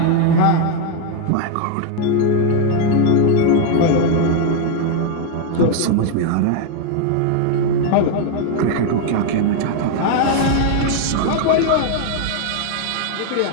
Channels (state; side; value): different; both; correlation 0.01